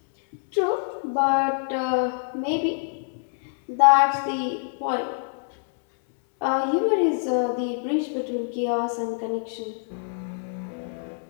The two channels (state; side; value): silent; right; 62 dB below the other